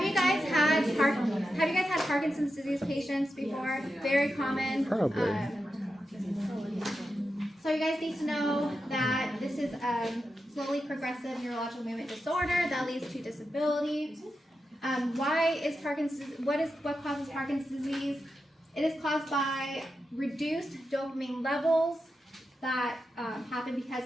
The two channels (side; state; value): both; normal; correlation 0.89